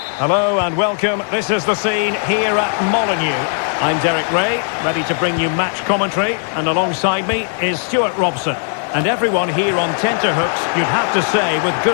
Hello and welcome. This is the scene here at Molineux. I'm Derek Ray, ready to bring you match commentary, and alongside me is Stuart Robson. And everyone here on tenterhooks, you'd have to say with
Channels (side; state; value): right; silent; 60 dB below the other